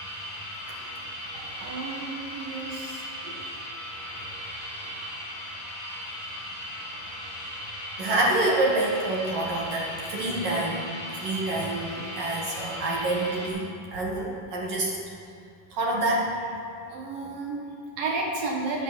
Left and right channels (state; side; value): late; left; 11 ms